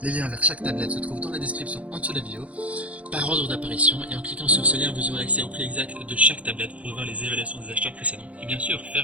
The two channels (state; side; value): late; left; 0.066 ms